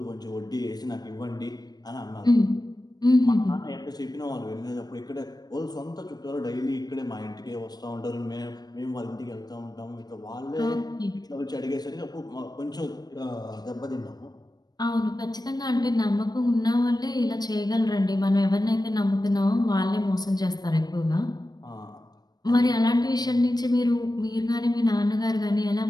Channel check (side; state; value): right; late; 0.19 ms